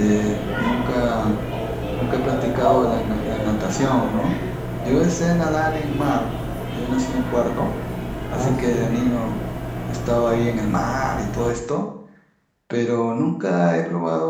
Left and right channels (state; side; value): identical; both; correlation 1.00